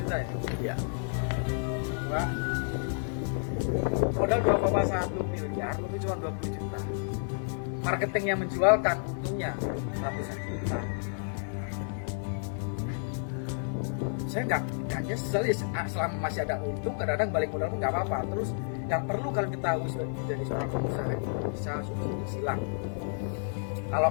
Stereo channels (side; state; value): right; silent; digital silence